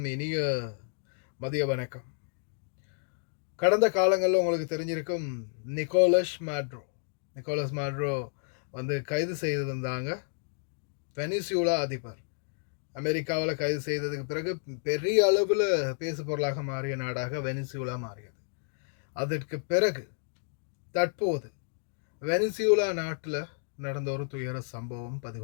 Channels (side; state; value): right; silent; digital silence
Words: இனிய மதிய வணக்கம். கடந்த காலங்களில் உங்களுக்கு தெரிஞ்சிருக்கும் நிக்கோலஸ் மேட்ரோ கைது செய்திருந்தாங்க. வெனிசுலா அதிபர் அமெரிக்காவில் கைது செய்ததுக்கு பிறகு பெரிய அளவில் பேசு பொருளாக மாறிய நாடாக வெனிசுலா மாறியது. அதற்கு பிறகு தற்போது வெனிசுலா நாட்டில் நடந்த ஒரு துயர சம்பவம்